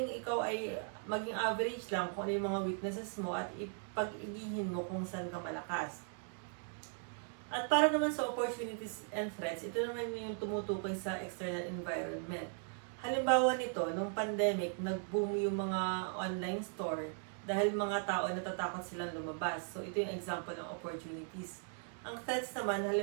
ikaw ay maging average lang kung ano yung mga weaknesses mo at ipag-igihin mo kung saan ka malakas. At para naman sa opportunities and threats, ito naman yung tumutukoy sa external environment. Halimbawa nito, nung pandemic, nag-boom yung mga online store dahil mga tao natatakot silang lumabas. So ito yung example ng opportunities. Ang threats naman,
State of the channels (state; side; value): silent; left; 52 dB below the other